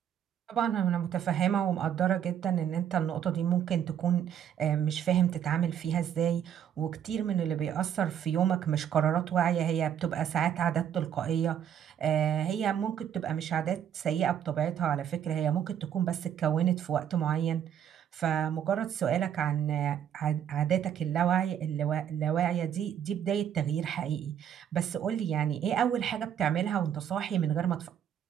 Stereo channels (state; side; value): quieter; left; 9.3 dB